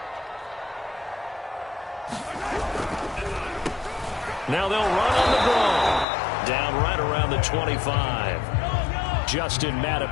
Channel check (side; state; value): right; drops out; at 6.1 s